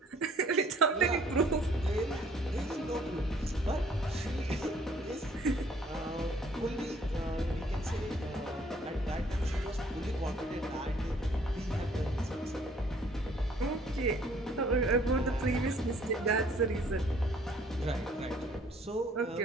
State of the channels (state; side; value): normal; both; correlation 0.59